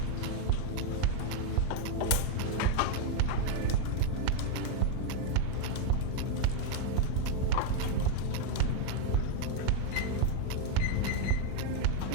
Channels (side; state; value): both; different; correlation 0.01